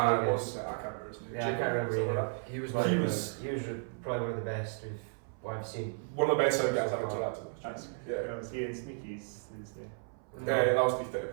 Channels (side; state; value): left; silent; 55 dB below the other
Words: can't remember his name. Yeah, I can't remember either. He was probably one of the best I've seen. One of the best sound guys I've interacted with. Was he in Sneaky's Tuesday? Yeah, that was Beef